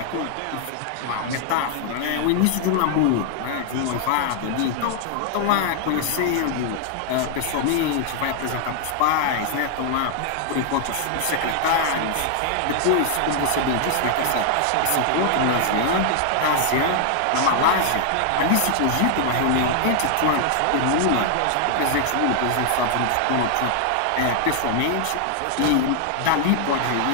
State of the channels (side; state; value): both; different; correlation 0.00